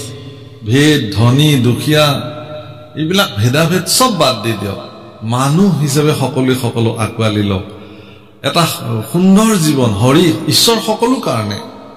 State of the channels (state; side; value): identical; both; correlation 1.00